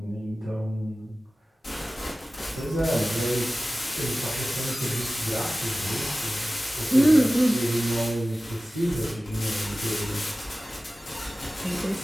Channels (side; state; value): both; normal; correlation 0.96